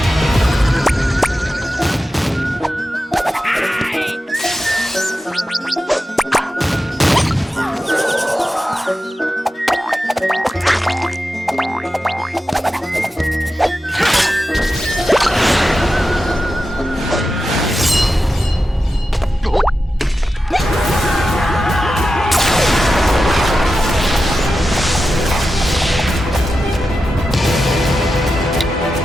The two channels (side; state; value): both; normal; correlation 0.91